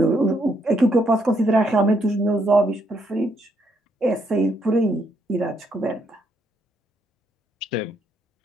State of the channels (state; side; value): normal; both; correlation 0.74